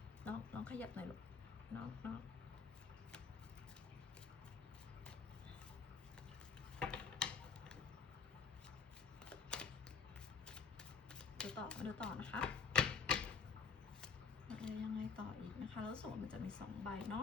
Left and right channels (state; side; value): quieter; right; 5.7 dB